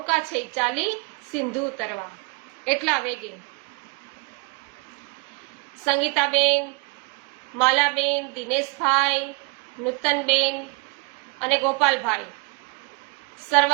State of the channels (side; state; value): left; quieter; 29.5 dB